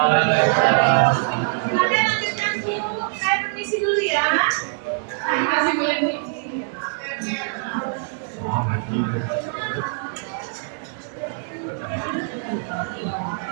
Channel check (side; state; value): left; silent; 63 dB below the other